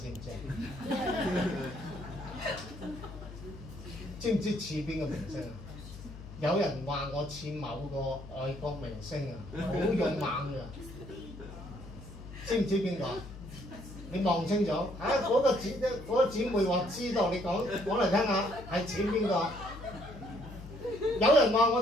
唔知？知唔知似邊個明星啊？有人話我似某個外國明星啊，好勇猛㗎。知唔知邊個？你望清楚啊！嗰個姊妹話知道，你講嚟聽下，係似邊個？有人話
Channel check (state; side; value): noise; left; hum, 14 dB below the sound